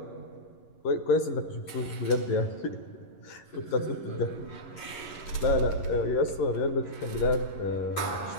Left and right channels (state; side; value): late; right; 11 ms